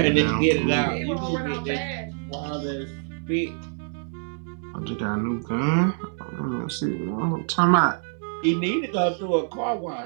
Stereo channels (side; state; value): left; silent; 61 dB below the other